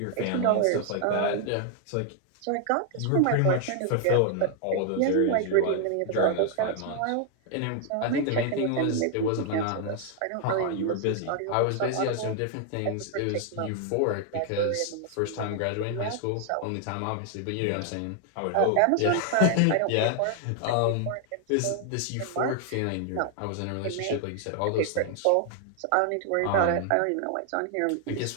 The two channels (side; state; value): both; different; correlation 0.00